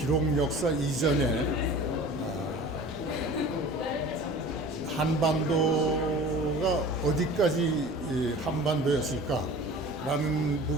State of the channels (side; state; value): both; normal; correlation 0.41